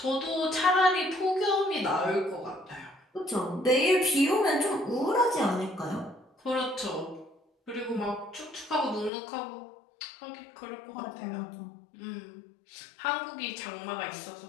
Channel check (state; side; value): drops out; right; at 9.1 s